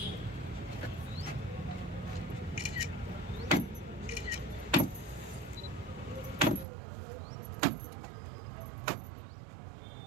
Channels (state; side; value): drops out; left; at 6.7 s